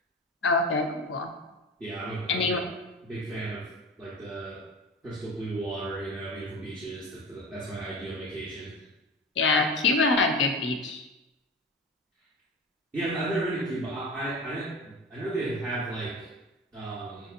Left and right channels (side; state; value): both; normal; correlation 0.30